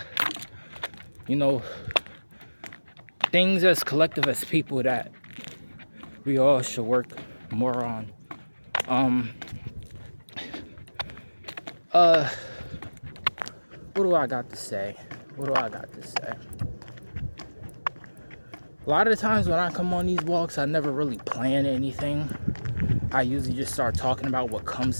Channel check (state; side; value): inverted; both; correlation -1.00